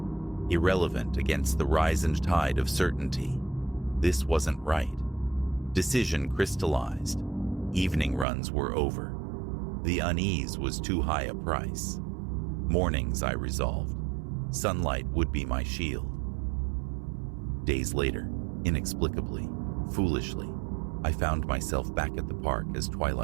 irrelevant against the rise and tide of certainty. This wasn't right. Decision crystallized. Evening runs were over. The unease was too high a price. Mornings, I resolved. Sunlight would be my shield. Days later, inexplicably, foolishly, I found myself back at the park as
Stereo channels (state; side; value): drops out; left; at 8.2 s